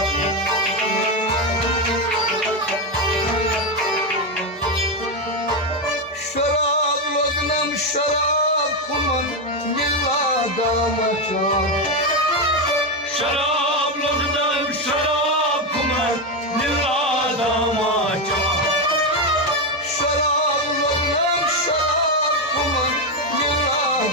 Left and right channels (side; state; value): both; normal; correlation 0.08